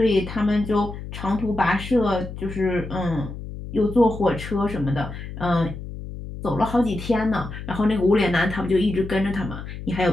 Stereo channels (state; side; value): noise; left; hum, 10 dB below the sound